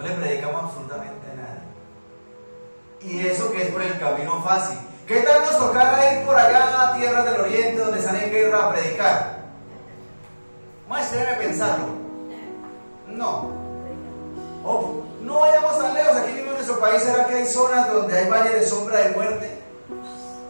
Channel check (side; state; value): both; inverted; correlation -1.00